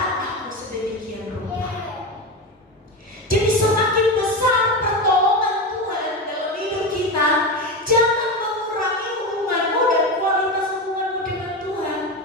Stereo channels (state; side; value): normal; both; correlation 0.19